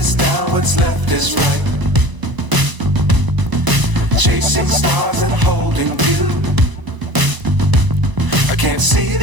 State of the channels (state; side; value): late; left; 1.0 ms